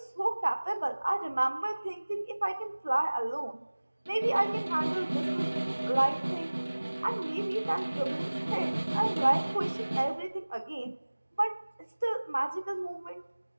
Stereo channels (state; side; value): inverted; both; correlation -1.00